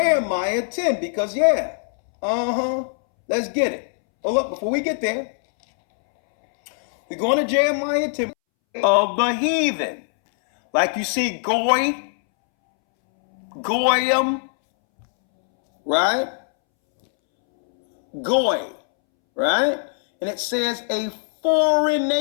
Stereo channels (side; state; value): right; silent; 65 dB below the other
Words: 10, because let's get it. But look, before we get there, we're going to Jeremiah 10 of the heathen. Like you see Goy, Goyim, right? Goy, right? And it says a foreign